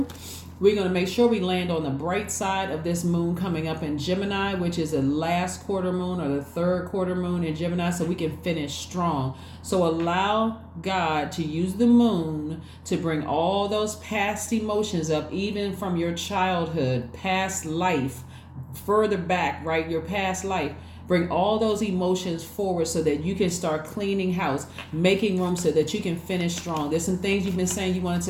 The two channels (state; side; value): identical; both; correlation 1.00